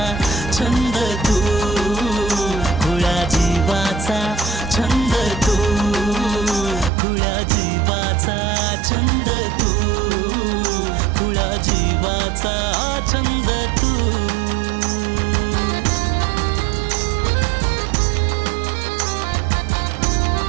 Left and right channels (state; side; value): drops out; left; at 6.9 s